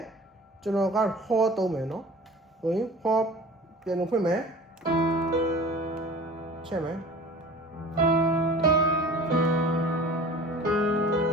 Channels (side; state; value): both; normal; correlation 0.42